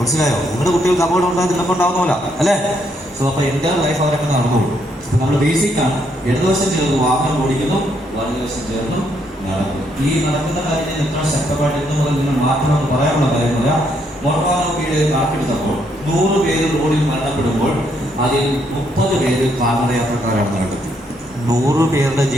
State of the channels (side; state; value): both; normal; correlation 0.74